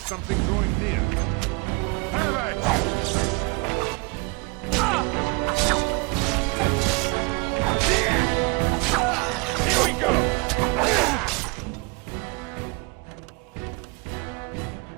drawing near. Have at you! Here we go!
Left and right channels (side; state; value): left; quieter; 28.9 dB